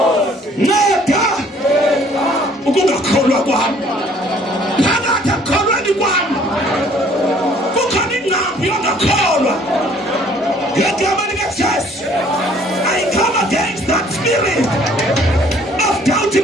nceda ukungakholwa kwami phakathi akukholweni kwami kukhona ingqambi yongakholwa ngegama likaJesu I come against that spirit of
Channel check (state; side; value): normal; both; correlation 0.58